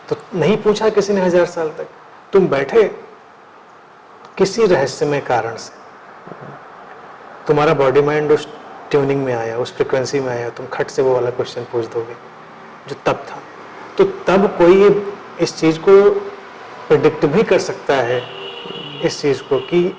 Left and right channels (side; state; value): both; identical; correlation 1.00